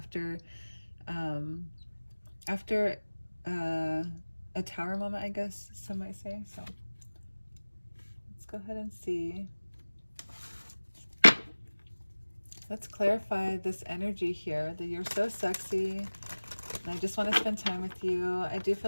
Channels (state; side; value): inverted; both; correlation -1.00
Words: a tower moment, I guess some might say. So let's go ahead and see. Let's clarify this energy here, that you're so sexy and I just want to spend time with you. I do